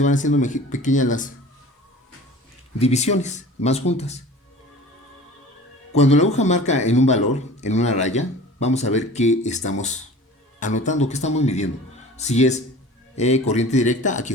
van haciendo pequeñas las divisiones, más juntas. Cuando la aguja marca en un valor, en una raya, vamos a ver qué estamos anotando, qué estamos midiendo. Si es corriente directa, aquí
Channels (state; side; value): normal; both; correlation 0.41